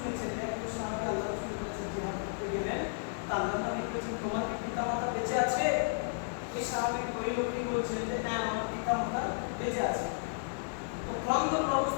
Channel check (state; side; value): silent; right; digital silence